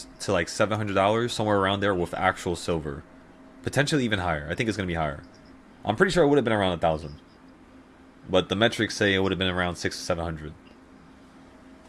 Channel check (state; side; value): identical; both; correlation 1.00